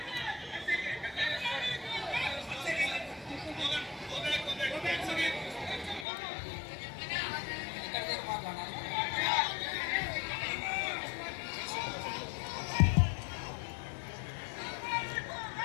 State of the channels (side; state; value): right; drops out; at 6.1 s